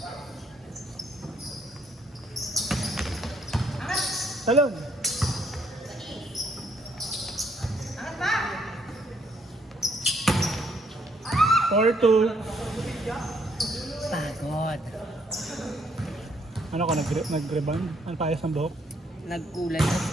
Salon. Four two. Pagod. Ano ka, nag-rebound? Ano payas ng buhok? Nagkulay.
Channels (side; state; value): both; normal; correlation 0.70